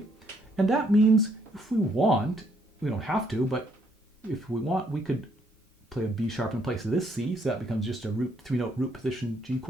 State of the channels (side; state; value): both; normal; correlation 0.70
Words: And that means if we want, we don't have to, but if we want, we could play a B sharp in place of this C, so that becomes just a 3-note root position G